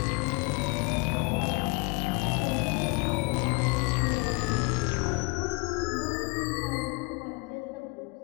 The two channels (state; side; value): quieter; right; 28.2 dB